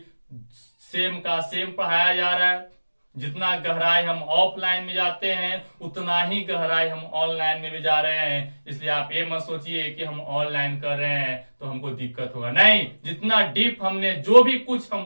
सेम का सेम पढ़ाया जा रहा है। जितना गहराई हम ऑफलाइन में जाते हैं, उतना ही गहराई हम ऑनलाइन में भी जा रहे हैं। इसलिए आप ये मत सोचिए कि हम ऑनलाइन कर रहे हैं तो हमको दिक्कत होगा, नहीं। जितना डीप हमने जो भी कुछ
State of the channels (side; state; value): both; inverted; correlation -1.00